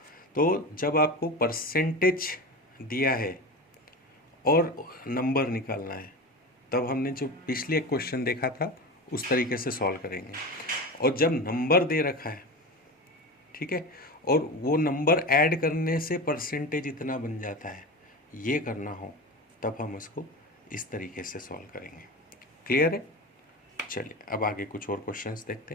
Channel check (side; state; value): both; normal; correlation 0.27